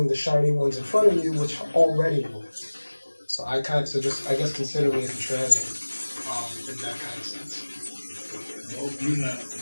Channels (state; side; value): inverted; both; correlation -1.00